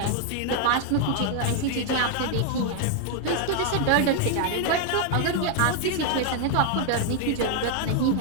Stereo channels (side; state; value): both; different; correlation 0.00